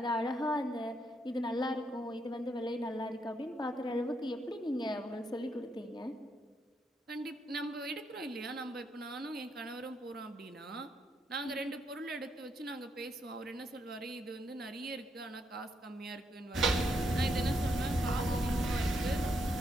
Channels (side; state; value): both; normal; correlation 0.77